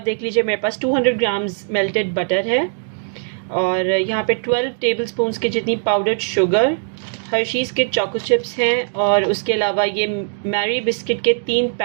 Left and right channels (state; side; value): silent; left; digital silence